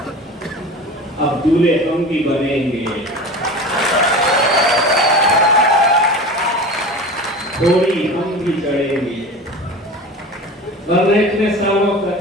अब दूल्हे हम भी बनेंगे, घोड़ी हम भी चढ़ेंगे। वरना इतने सालों तक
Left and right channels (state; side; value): normal; both; correlation 0.33